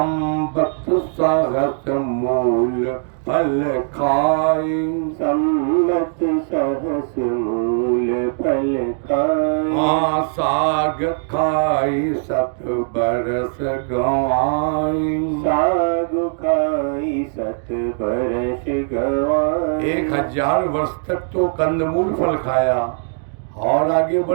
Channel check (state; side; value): silent; left; digital silence